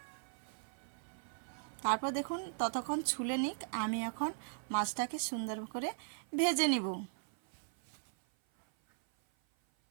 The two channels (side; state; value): left; silent; 52 dB below the other